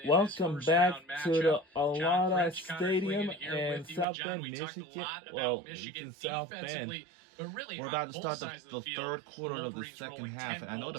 Welcome back to the Alada Stadium in South Bend, Michigan. Well, it's in South Bend. We're about to start the third quarter of the second half. I know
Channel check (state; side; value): drops out; left; at 4.0 s